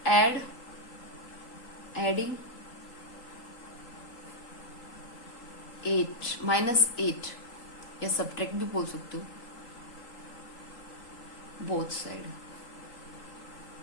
एडिंग 8 माइनस 8 या सब्ट्रैक्ट भी बोल सकते हो, बोथ साइड,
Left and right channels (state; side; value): late; right; 3.8 ms